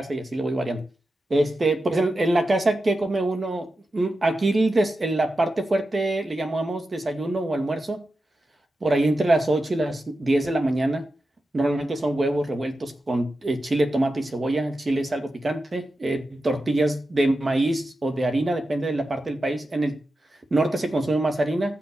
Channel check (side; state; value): both; normal; correlation 0.91